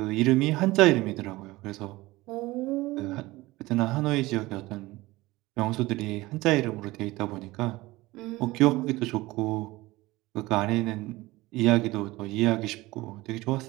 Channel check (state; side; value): quieter; left; 19.7 dB